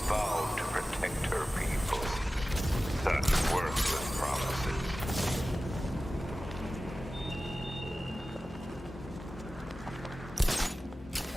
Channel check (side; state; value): both; normal; correlation 0.95